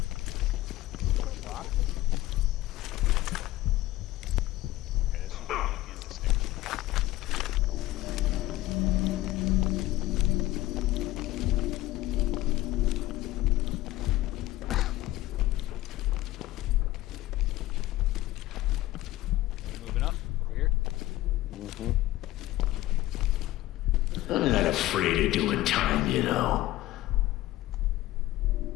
I'm not afraid of doing time, you know.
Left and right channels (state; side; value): quieter; right; 16.4 dB